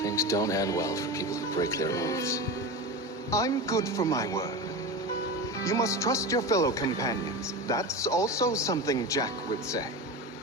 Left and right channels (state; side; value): normal; both; correlation 0.25